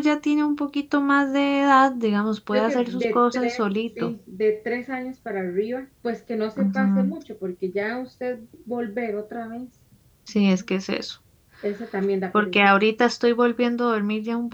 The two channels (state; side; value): identical; both; correlation 1.00